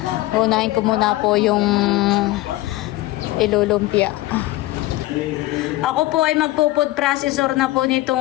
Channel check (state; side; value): quieter; right; 17.9 dB